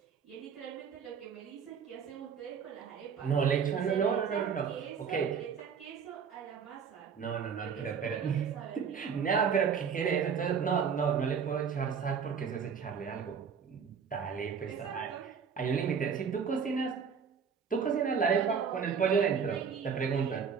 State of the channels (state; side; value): quieter; left; 6.6 dB